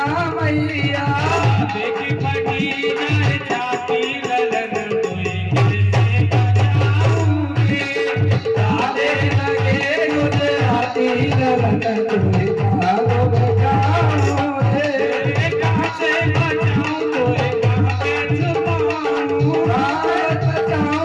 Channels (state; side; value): identical; both; correlation 1.00